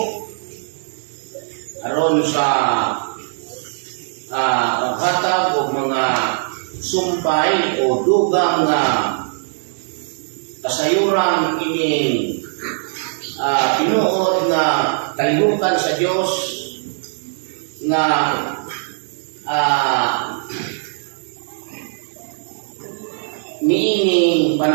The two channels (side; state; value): left; silent; digital silence